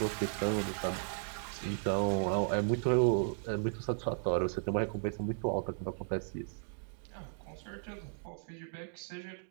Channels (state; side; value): silent; left; digital silence